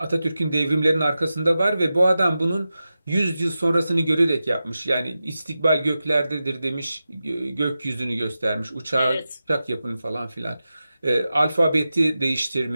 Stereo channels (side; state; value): both; inverted; correlation -0.93